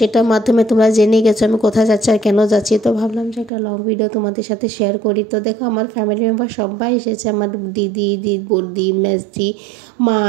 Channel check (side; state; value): left; drops out; at 3.5 s